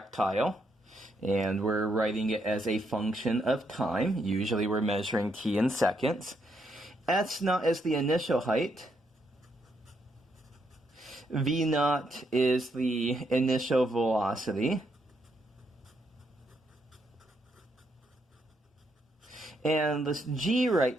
And we're writing it as a function of time. Usually we're measuring t in seconds. S naught is the initial height. V naught is the initial velocity. And this g right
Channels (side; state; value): both; normal; correlation 0.77